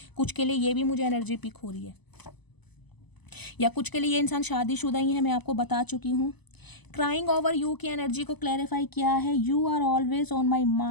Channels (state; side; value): late; right; 0.99 ms